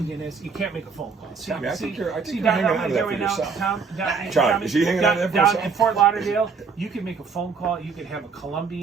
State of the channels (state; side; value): quieter; left; 5.3 dB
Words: is? You can't make a phone call. See, Tommy, I think you're hanging down on to that for right now, yourself. Tommy, is he hanging on to that for down yourself? in Fort Lauderdale, you can make a phone call. You can have a